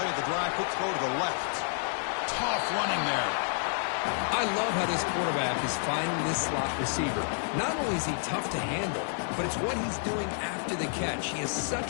of the drive, quick throw to the left. Tough running there. I love how this quarterback is finding this slot receiver. Not only is he tough to handle, but it's what he's doing after the catch. He has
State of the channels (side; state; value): right; silent; digital silence